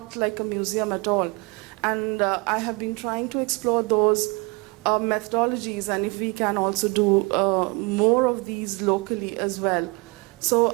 like a museum at all. And I have been trying to explore those methodologies, and if we can also do more of these locally as well.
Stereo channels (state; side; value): quieter; left; 28.0 dB